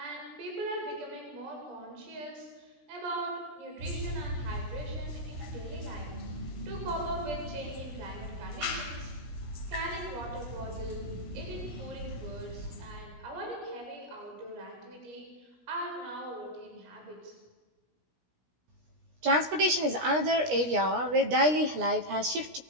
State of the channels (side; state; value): left; late; 17 ms